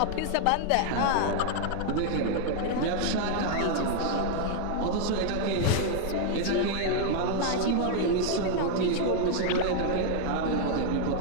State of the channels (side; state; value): both; different; correlation 0.00